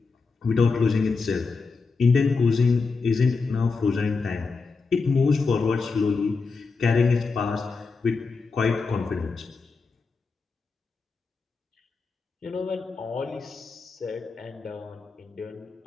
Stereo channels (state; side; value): quieter; right; 4.5 dB